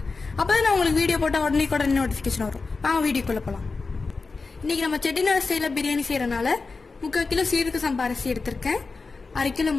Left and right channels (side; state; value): right; quieter; 4.1 dB